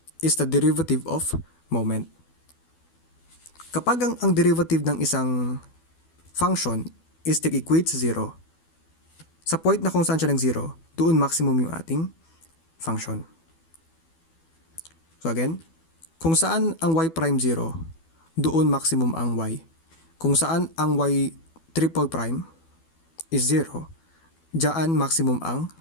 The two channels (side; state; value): right; late; 12 ms